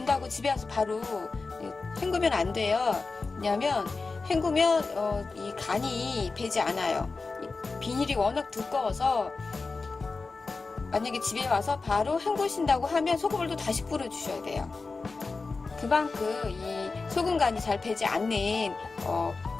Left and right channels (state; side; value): quieter; right; 4.0 dB